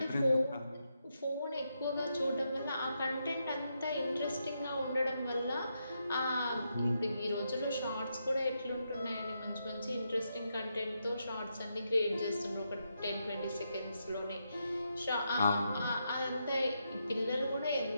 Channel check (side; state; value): both; inverted; correlation -0.82